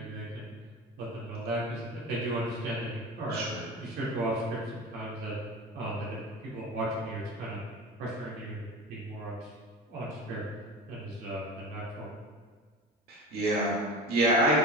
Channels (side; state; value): both; normal; correlation 0.31